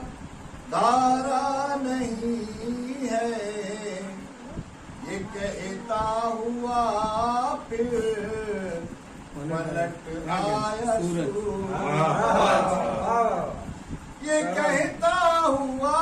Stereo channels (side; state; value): both; identical; correlation 1.00